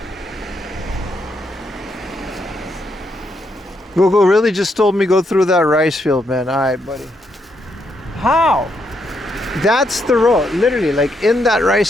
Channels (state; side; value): normal; both; correlation 0.78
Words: Google really just told me go through that rice field, man. Alright, buddy. How? That's the road. Literally, like in that